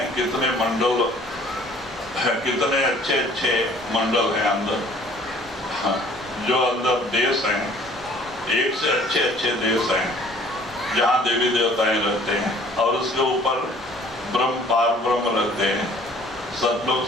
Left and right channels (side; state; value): both; normal; correlation 0.53